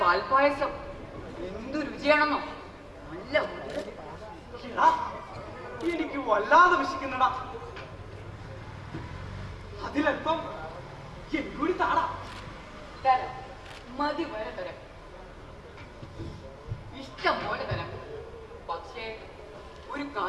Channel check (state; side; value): identical; both; correlation 1.00